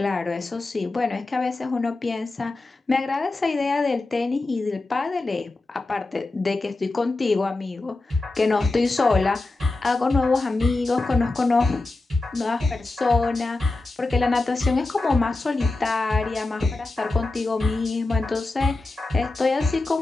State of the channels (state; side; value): quieter; right; 3.2 dB